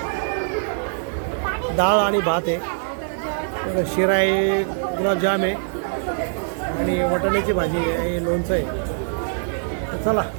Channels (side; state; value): left; silent; digital silence